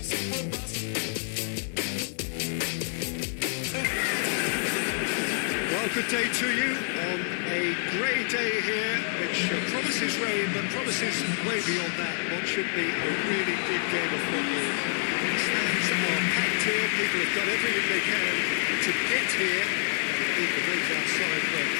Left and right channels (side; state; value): right; silent; 60 dB below the other